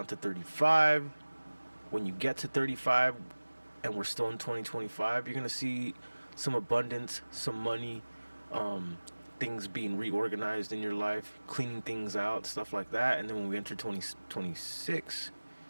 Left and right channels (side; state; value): both; inverted; correlation -1.00